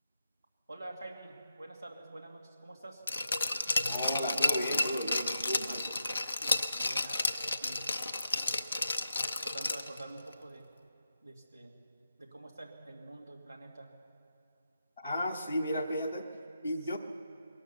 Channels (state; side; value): inverted; both; correlation -0.87